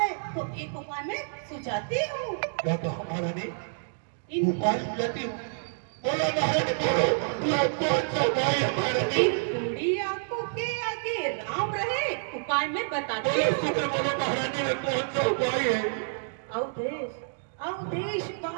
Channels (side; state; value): left; silent; digital silence